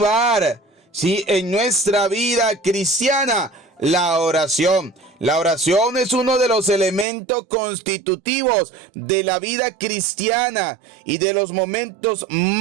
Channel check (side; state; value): left; drops out; at 7.1 s